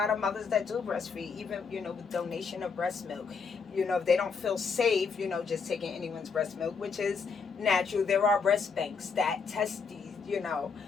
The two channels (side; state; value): right; quieter; 5.3 dB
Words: of mothers that do breastfeed, even, with donation of breast milk. If they don't feel safe, just taking anyone's breast milk, which is natural. There are breast banks that test these,